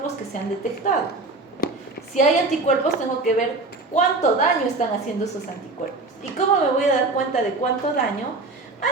que se han detectado. Si hay anticuerpos, tengo que ver cuánto daño están haciendo esos anticuerpos. ¿Y cómo me voy a dar cuenta de cuánto daño?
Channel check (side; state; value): left; quieter; 3.4 dB